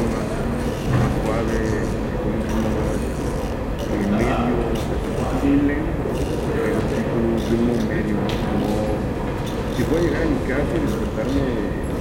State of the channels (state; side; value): identical; both; correlation 1.00